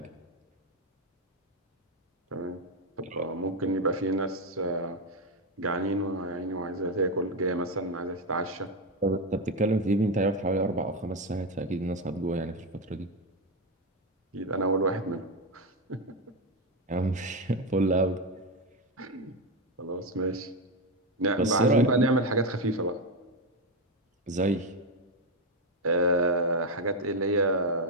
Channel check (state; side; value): normal; both; correlation 0.10